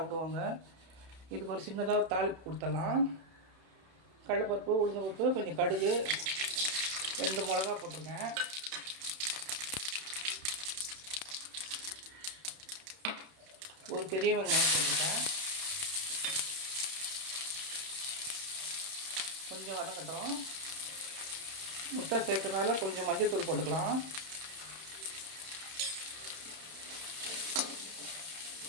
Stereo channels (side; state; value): left; late; 31 ms